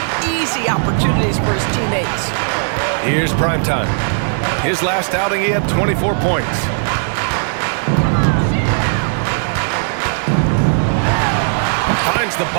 easy opportunities for his teammates. Here's primetime. His last outing, he had 24 points. Finds the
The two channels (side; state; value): left; silent; 68 dB below the other